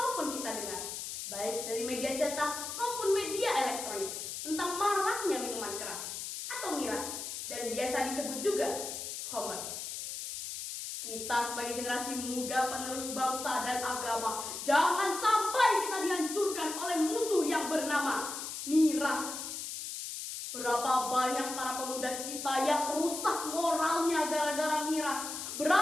kita dengar, baik dari media cetak maupun media elektronik, tentang maraknya minuman keras atau miras, dan biasa disebut juga khamr. Kita sebagai generasi muda penerus bangsa dan agama, jangan sampai kita dihancurkan oleh musuh yang bernama miras. Berapa banyak para pemuda kita yang rusak moralnya gara-gara miras.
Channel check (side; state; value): left; noise; hiss, 6 dB below the sound